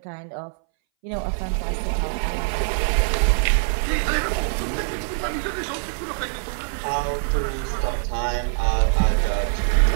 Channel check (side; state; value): left; silent; 61 dB below the other